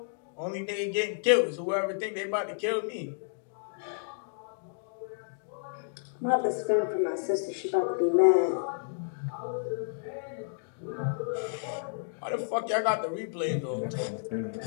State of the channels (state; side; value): silent; right; digital silence